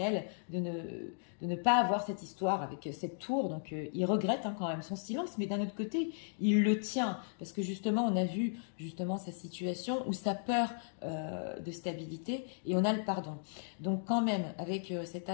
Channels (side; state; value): right; silent; digital silence